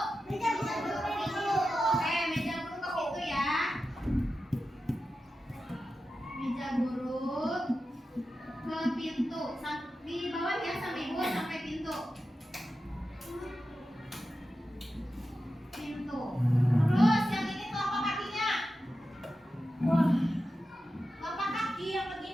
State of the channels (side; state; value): both; normal; correlation 0.92